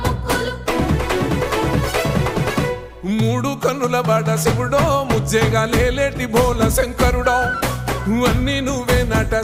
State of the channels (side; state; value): both; identical; correlation 1.00